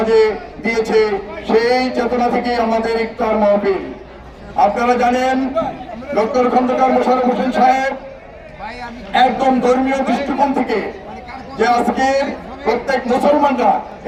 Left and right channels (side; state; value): both; identical; correlation 1.00